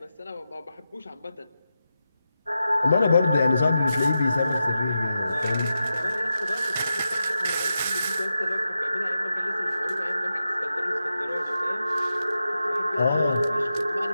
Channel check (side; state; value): both; inverted; correlation -0.89